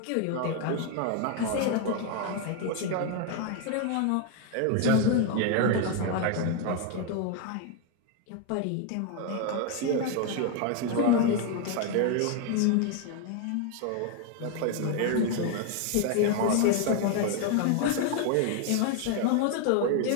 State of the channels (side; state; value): both; different; correlation 0.01